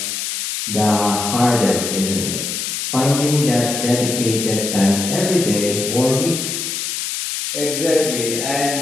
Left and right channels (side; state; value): left; noise; hiss, 3 dB below the sound